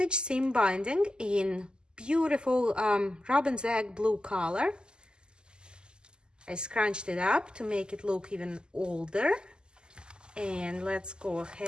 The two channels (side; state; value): left; late; 0.047 ms